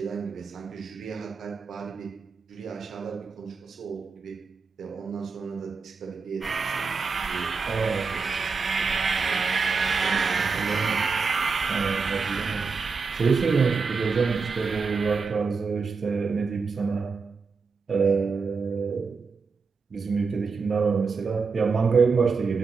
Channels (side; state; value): left; quieter; 4.9 dB